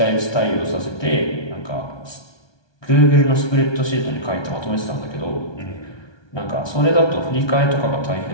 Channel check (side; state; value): right; late; 1.2 ms